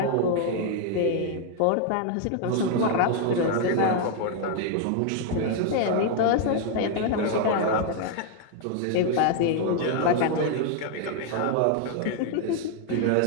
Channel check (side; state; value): both; different; correlation 0.00